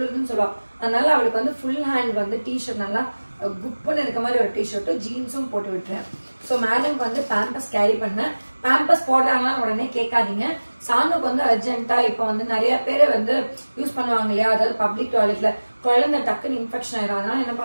சொல்லுவா. அதனால அவளுக்கு ஃபுல் ஹேண்ட் டிஷர்ட் நல்லா குப்புன்னு இருக்க மாதிரி ஒரு டிஷர்ட்டும் ஜீன்ஸும் போட்டு விட்டுறேன். ஸோ மேடம்க்கு பேம்பஸ் கேரி பண்ணேன். பேம்பஸ் போடுறாங்களா உடனே கேட்காதீங்க. சாணுக்கு அர்ஜென்ட்டா இப்போ நிறைய பேர் யூஸ் பண்ணுவாங்க இல்லையா, அதாவது பப்ளிக் டாய்லெட்ல குழந்தை டக்குன்னு இன்ஃபெக்ஷன் ஆயிடும். அதனால என்ன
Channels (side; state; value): both; inverted; correlation -1.00